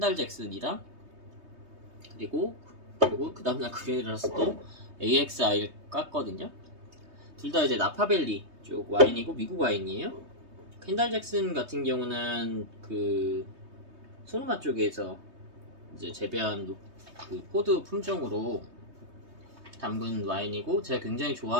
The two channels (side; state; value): left; late; 3.2 ms